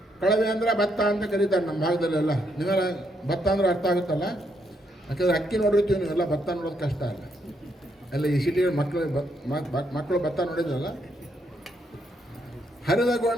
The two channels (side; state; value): both; normal; correlation 0.76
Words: ಕಳವೆ ಅಂದರೆ ಭತ್ತ ಅಂತ ಕರೀತಾರೆ ನಮ್ಮ ಭಾಗದಲ್ಲೆಲ್ಲ. ನೀವೆಲ್ಲ ಭತ್ತ ಅಂದ್ರೆ ಅರ್ಥ ಆಗುತ್ತಲ್ಲ, ಯಾಕಂದರೆ ಅಕ್ಕಿ ನೋಡಿರ್ತೀವಿ, ನೀವೆಲ್ಲ ಭತ್ತ ನೋಡೋದು ಕಷ್ಟ ಅಲ್ಲ. ಎಲ್ಲ ಈ ಸಿಟಿಗಳ ಮಕ್ಕಳು ಭತ್ತ ನೋಡಿದ್ರಲ್ಲ. ಹರಿದ